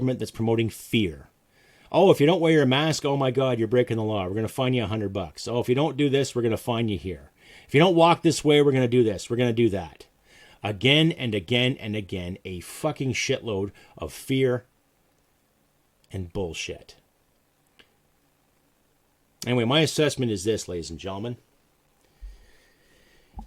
that's promoting fear. Oh, if you don't wear your mask, oh my God, you're breaking the law. We're going to fine you $100. Oh, if you don't do this, we're going to fine you here. If you don't walk this way, we're going to do this. We're going to do that. Again and again and again, a fucking shitload of fear and bullshit. Anyway, my assessment is this, ladies and gentlemen.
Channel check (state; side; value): identical; both; correlation 1.00